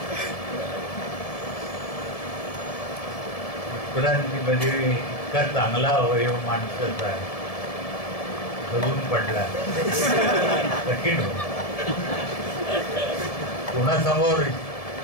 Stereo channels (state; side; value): late; right; 1.7 ms